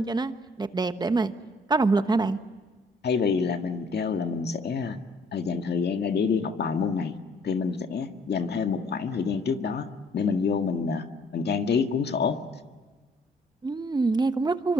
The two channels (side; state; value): both; normal; correlation 0.60